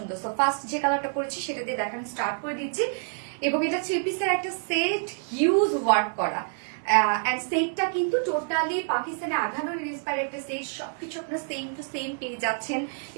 সো ফার্স্ট যে কালারটা করেছি সেটা দিয়ে দেখানো স্টার্ট করে দিচ্ছি। এবং এটা 3 পিসের একটা সেট, হিউজ ওয়ার্ক করা। এন্ড সেটটা কিন্তু টোটালি পাকিস্তানি আঘানোর ইন্সপায়ার্ড একটা সেট। সবকিছু আপনারা সেম টু সেম পেয়ে যাচ্ছেন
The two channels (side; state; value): left; silent; digital silence